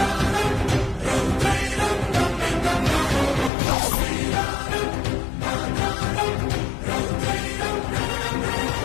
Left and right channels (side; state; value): right; drops out; at 3.5 s